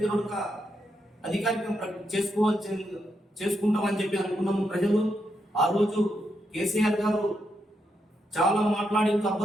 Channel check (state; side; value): normal; both; correlation 0.82